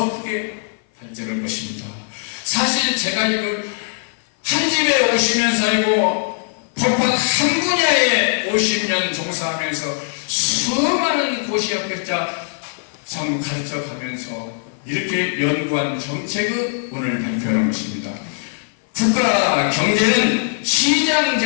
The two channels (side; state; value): right; silent; 57 dB below the other